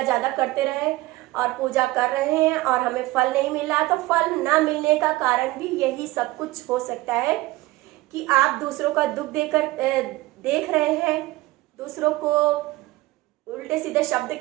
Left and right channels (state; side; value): quieter; left; 19.3 dB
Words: ज्यादा करते रहे और पूजा कर रहे हैं और हमें फल नहीं मिल रहा, तो फल ना मिलने का कारण भी यही सब कुछ हो सकता है कि आप दूसरों का दुख देख रहे हैं, दूसरों को उल्टे सीधे शब्द